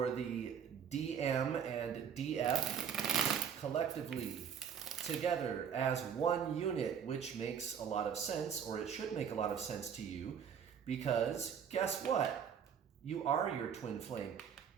the DM and DF collectively together as one unit, which makes a lot of sense, or it should make a lot of sense to you, because guess what? You are your twin flame.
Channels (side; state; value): left; quieter; 7.8 dB